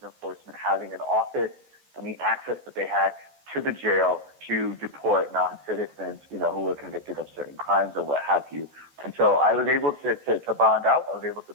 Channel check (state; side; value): late; left; 14 ms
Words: Enforcement having an office and the access that they had to the jail to deport non-citizens, who were convicted of certain crimes or what have you. And so I was able to bond out. I was able to